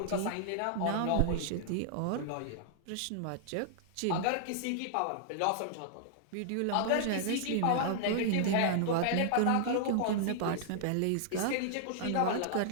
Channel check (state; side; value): different; both; correlation -0.01